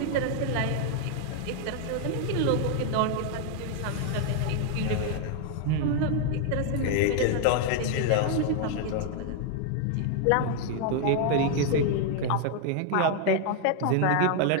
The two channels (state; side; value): different; both; correlation 0.00